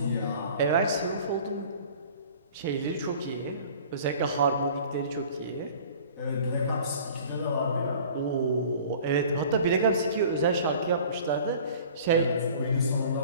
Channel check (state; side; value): inverted; both; correlation -0.46